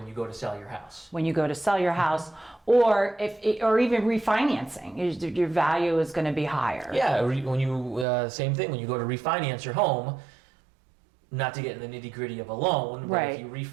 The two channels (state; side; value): drops out; left; at 8.1 s